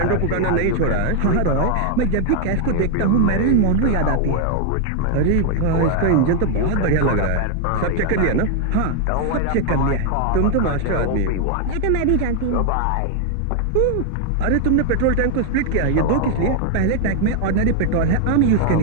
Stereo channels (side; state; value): both; different; correlation 0.00